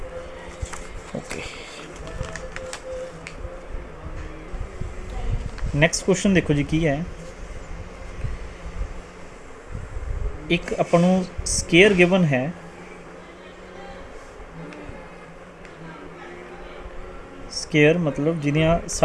ओके नैक्सट क्वेश्चन देखो जी की है एक अपन स्केयर गिवन है स्केयर मतलब जिहदियां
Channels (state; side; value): identical; both; correlation 1.00